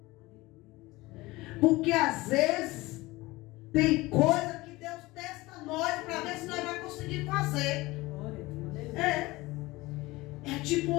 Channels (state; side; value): quieter; right; 20.5 dB